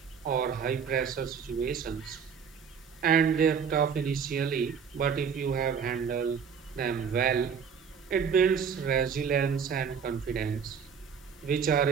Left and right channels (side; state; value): left; quieter; 6.7 dB